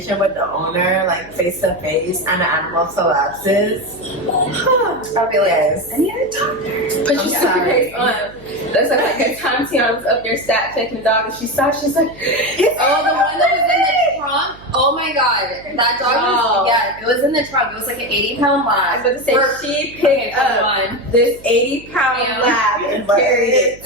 with the owner, like face to face, and the animal collapses. I'll be like, Yes. I need a doctor. But I'm you sorry. That's like a time Tiana was up there stat checking the dog, and she saw, she's like, Oh, the one that was in the trunk? Oh my god. That dog Oh. was, yeah, it was in the trunk. It was like an 80-pound I was lab. about to say, We're- she picked up one. this 80-pound Yeah. lab and carried it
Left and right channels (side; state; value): right; noise; hum, 21 dB below the sound